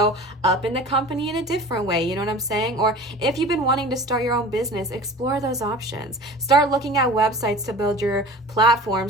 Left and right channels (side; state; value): both; normal; correlation 0.39